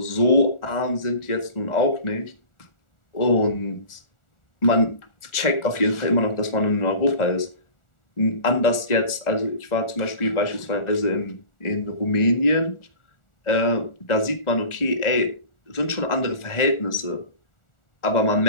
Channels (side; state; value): right; late; 1.4 ms